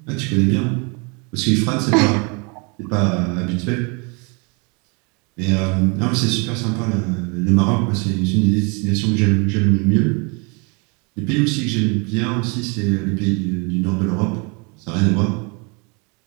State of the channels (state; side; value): quieter; left; 32.1 dB